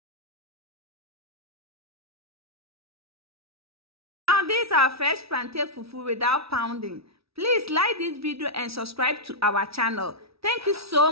Now these are fresh plantain fufu without pounding. Please like this video and subscribe to our channel. Thank you so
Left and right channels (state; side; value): late; left; 0.76 ms